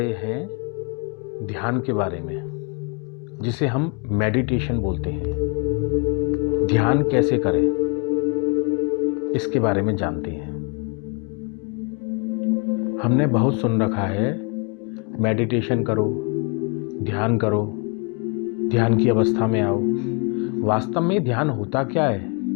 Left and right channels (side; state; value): right; quieter; 34.9 dB